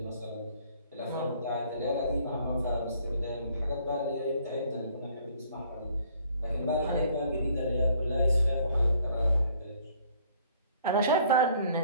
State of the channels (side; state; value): both; inverted; correlation -0.60